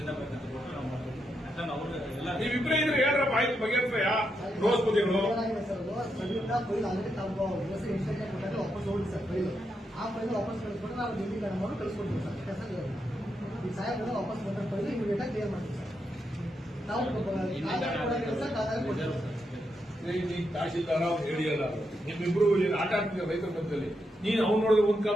ಬೇಕಂತ ಕೊಟ್ಟು ನಾವು ಮಾಡ್ತೀವಿ. ಎಲ್ಲ ನೀವಿಬ್ರೇ ಇದ್ರೆ ಹೇಳ್ರಪ್ಪ, ಆಯ್ತು ಬಗೆಹರಿಸ್ರಯ್ಯ. ರೋಸ್ ಬುದ್ಧಿಗಳು ಆ ಫೈಲ್ ವಾಪಸ್ ಕಳಿಸ್ಕೊಂಡು ನಾವು ಡಿಗ್ರಿ ಮಾಡಿ ಕಳಿಸ್ಕೊಡ್ತೀವಿ ಸರ್. ಈ ಸಾಹೇಬ್ರ ವಾಪಸ್ ಬಂದ ಫೈಲ್ ಇಮಿಡಿಯೇಟ್ ಆಗಿ ಕ್ಲಿಯರ್ ಮಾಡ್ತೀವಿ ಸರ್. ನಾವು ತಹಶೀಲ್ದಾರ ಅವ್ರು ಹೇಳಿಯಲ್ಲ, ನಿಮ್ಮಿಬ್ರು ಏನು ಆಟ ಆಡ್ತಿದ್ದೀರ ರೈತರ ಮಧ್ಯದಲ್ಲಿ. ನೀನ್ ಅವ್ನು ನೋಡಿದ್ರೆ ಒಂದ್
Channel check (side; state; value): both; normal; correlation 0.83